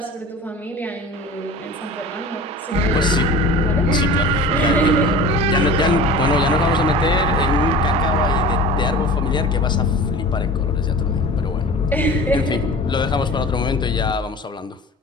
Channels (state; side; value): normal; both; correlation 0.38